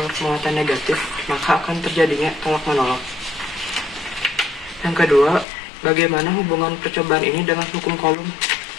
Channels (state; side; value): drops out; right; at 5.5 s